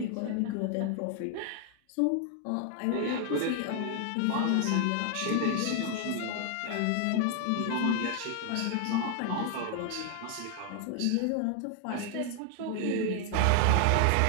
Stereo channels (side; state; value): both; different; correlation 0.00